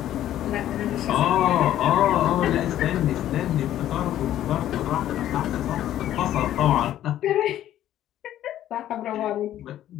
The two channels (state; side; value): quieter; right; 12.3 dB